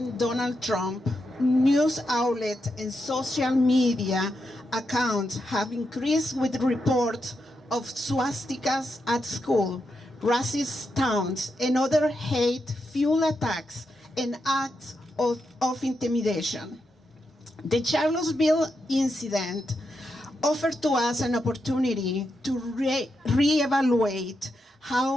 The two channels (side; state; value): both; normal; correlation 0.85